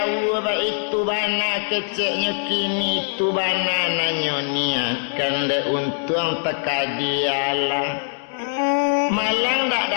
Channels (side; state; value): right; silent; digital silence